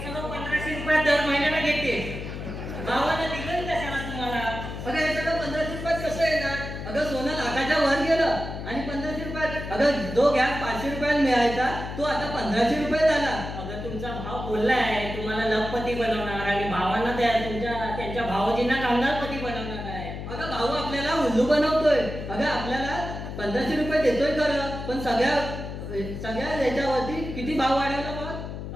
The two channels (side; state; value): left; noise; hum, 8 dB below the sound